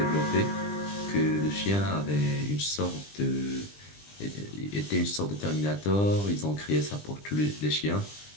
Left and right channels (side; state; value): right; late; 20 ms